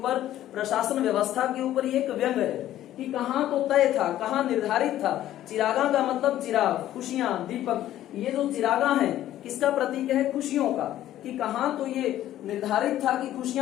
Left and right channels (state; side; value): quieter; right; 13.0 dB